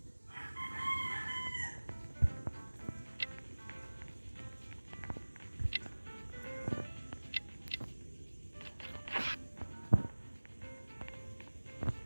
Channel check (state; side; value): inverted; both; correlation -1.00